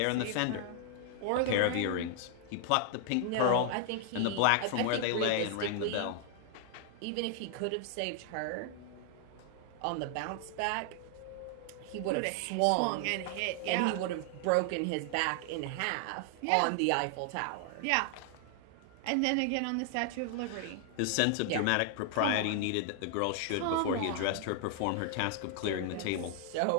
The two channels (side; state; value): both; different; correlation 0.00